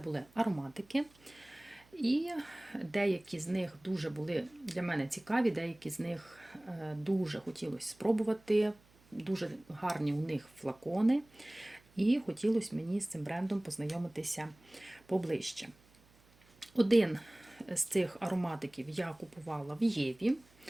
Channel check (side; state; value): right; noise; hum, 29 dB below the sound